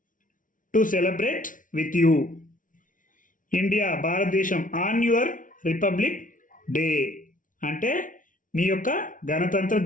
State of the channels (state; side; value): late; right; 0.38 ms